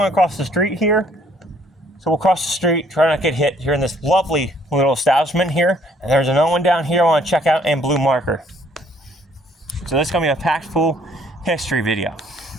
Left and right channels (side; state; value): both; normal; correlation 0.63